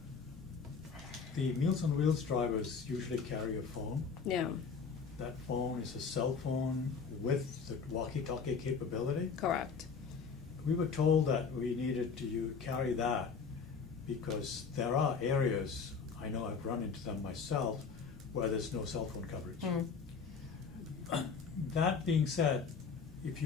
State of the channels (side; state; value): right; quieter; 5.6 dB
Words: The Meals on Wheels drivers usually carry a phone. Yeah, That phone is a cell phone with the walkie-talkie capability. correct. We were told that we needed to carry that because there are areas, I know I've run into them myself, where there's no cell phone coverage. That being said, if